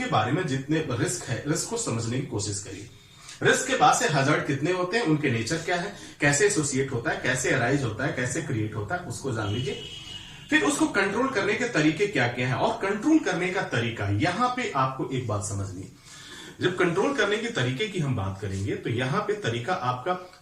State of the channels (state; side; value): identical; both; correlation 1.00